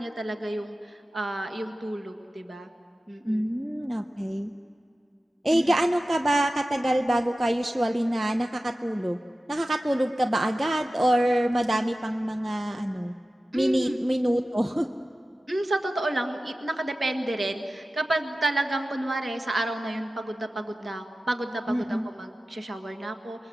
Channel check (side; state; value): both; normal; correlation 0.95